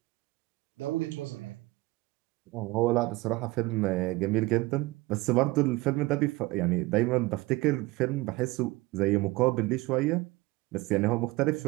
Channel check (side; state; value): left; quieter; 21.0 dB